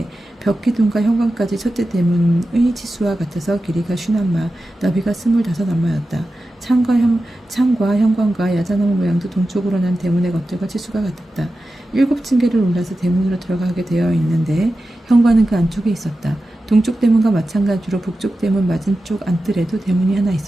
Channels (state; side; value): normal; both; correlation 0.92